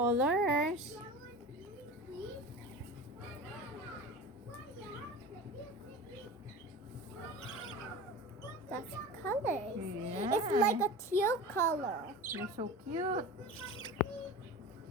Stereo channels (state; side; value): normal; both; correlation 0.33